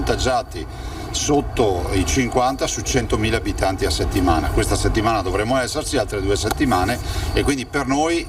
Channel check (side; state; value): both; identical; correlation 1.00